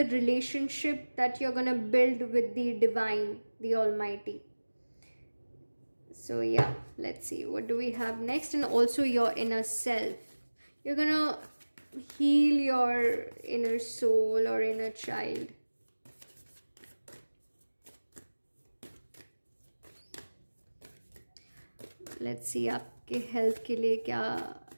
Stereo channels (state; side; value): inverted; both; correlation -1.00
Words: relationship that you're gonna build with the divine, the almighty. So yeah, let's see what do we have next. And also your inner self, you're gonna heal your inner soul or inner child. Let's see आपके health के लिए क्या